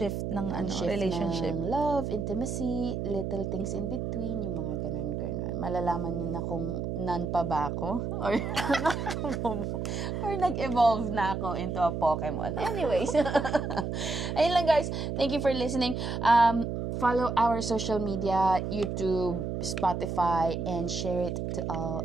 ng relationship. Ng love, intimacy, little things in between, yung mga ganun. Malalaman nyo na kung none pa ba ako or nag-evolve na ako into a Pokemon. Anyways. Ayun lang, guys. Thank you for listening. Follow our social media, YouTube, Spotify, and share it to all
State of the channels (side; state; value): right; noise; hum, 3 dB below the sound